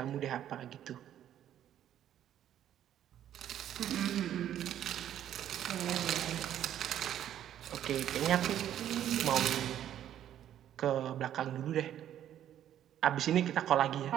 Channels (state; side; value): quieter; left; 11.0 dB